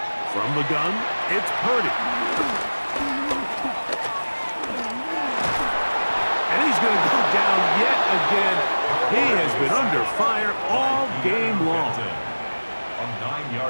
From the gun, it's Purdy. And he's going to go down yet again. He has been under fire all game long. A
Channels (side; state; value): both; inverted; correlation -1.00